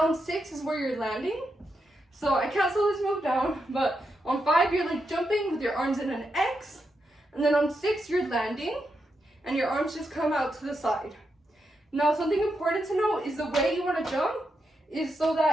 6 is where you're landing. So I can't slow this move down, but on 5, you're like jumping with your arms in an X, and then on 6, you're landing, and your arms just come out to the side. Now, something important to know is the way you want to jump is so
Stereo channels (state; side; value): normal; both; correlation 0.84